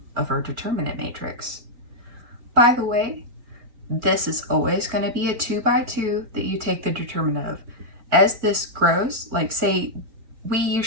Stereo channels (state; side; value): late; left; 4.4 ms